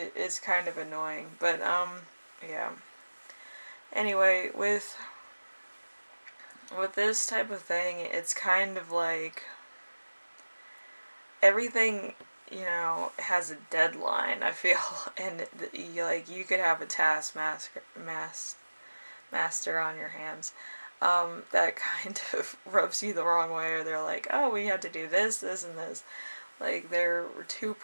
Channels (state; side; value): inverted; both; correlation -1.00